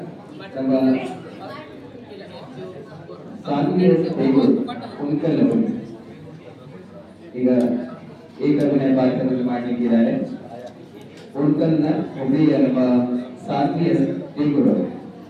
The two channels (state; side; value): identical; both; correlation 1.00